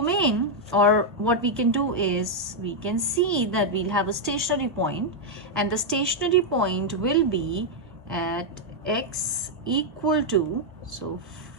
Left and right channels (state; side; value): normal; both; correlation -0.02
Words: or what we can do is we can see that we'll have a stationary point, and the stationary point will be at x equal to, so